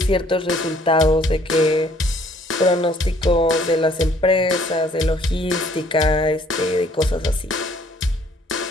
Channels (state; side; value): normal; both; correlation 0.60